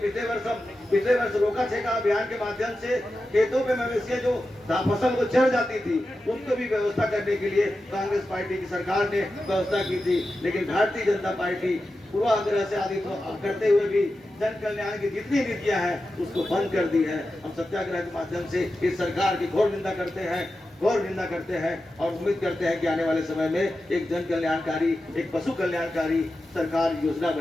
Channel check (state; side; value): normal; both; correlation 0.92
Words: वर्ष रोका छेका अभियान के माध्यम से खेतों पे मवेशियां जो फसल को चढ़ जाती थी उनको भी व्यवस्था करने के लिए कांग्रेस पार्टी की सरकार ने व्यवस्था की थी। लेकिन भारतीय जनता पार्टी पूर्वाग्रह से आदि करते हुए भी जन कल्याण की जितनी नीतियां हैं उसको बंद कर दी है। हम सत्याग्रह के माध्यम से इस सरकार की घोर निंदा करते हैं और उम्मीद करते हैं कि आने वाले समय में एक जन कल्याणकारी, एक पशु कल्याणकारी सरकार योजना